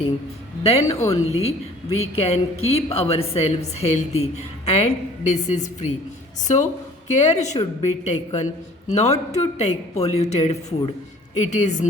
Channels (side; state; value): both; normal; correlation 0.50